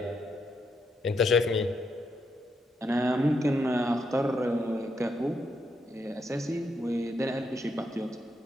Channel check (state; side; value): normal; both; correlation 0.80